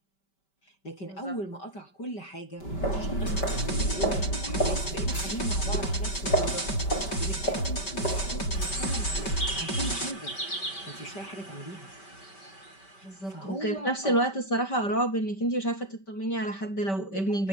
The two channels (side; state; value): right; late; 5.2 ms